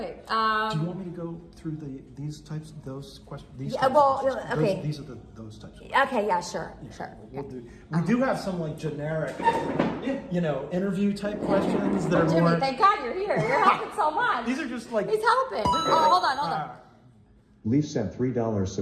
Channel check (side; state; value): both; identical; correlation 1.00